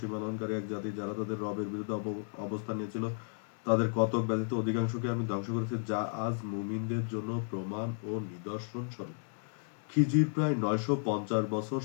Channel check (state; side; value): silent; right; digital silence